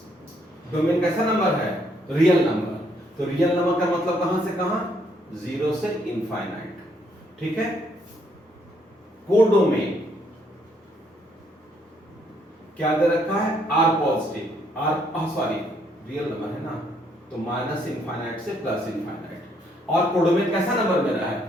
कैसा नंबर है, रियल नंबर। तो रियल नंबर का मतलब कहां से कहां, 0 से इनफाइनाइट, ठीक है। कोडोमेन क्या दे रखा है, r positive, sorry real number है ना, तो माइनस इनफाइनाइट से प्लस इनफाइनाइट। और कोडोमेन कैसा नंबर मेरा है,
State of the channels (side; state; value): both; normal; correlation 0.70